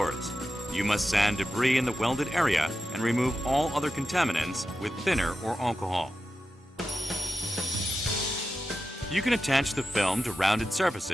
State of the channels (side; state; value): both; normal; correlation 0.91